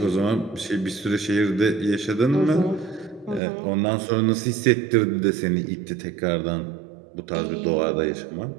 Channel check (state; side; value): drops out; left; at 3.4 s